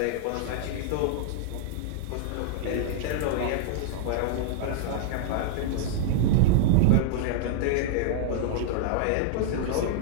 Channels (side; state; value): both; different; correlation -0.01